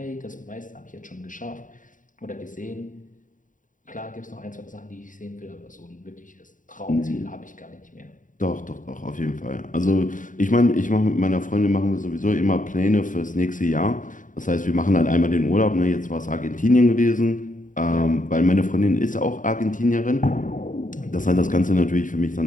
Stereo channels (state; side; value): late; right; 0.38 ms